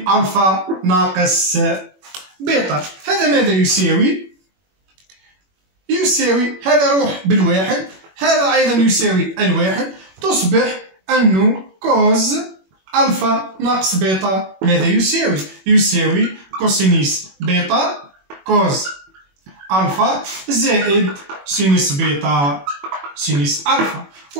ألفا ناقص بيتا. هذا ماذا يساوي؟ يساوي هذا روح بالواحد، هذا أيضا يساوي الواحد. تصبح أنه كوز ألفا ناقص بيتا ماذا يساوي؟ يساوي كوسينوس بيتا كوز ألفا زائد سينوس بيتا سينوس ألفا.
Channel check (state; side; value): late; left; 21 ms